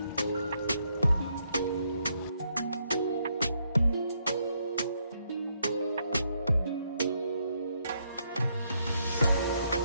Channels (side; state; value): both; inverted; correlation -0.75